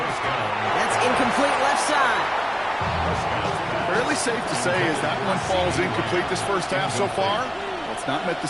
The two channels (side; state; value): both; identical; correlation 1.00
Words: down. That's incomplete left side. Fairly safe to say as that one falls incomplete this first half so far, it's not met